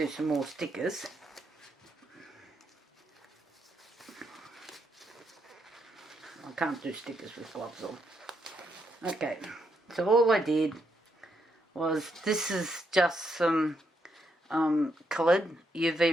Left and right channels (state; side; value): normal; both; correlation 0.78